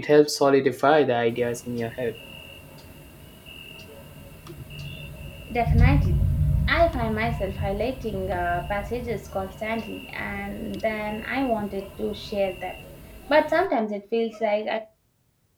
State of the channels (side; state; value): both; identical; correlation 1.00